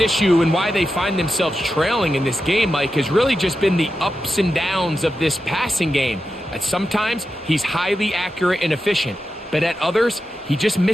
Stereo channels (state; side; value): normal; both; correlation 0.90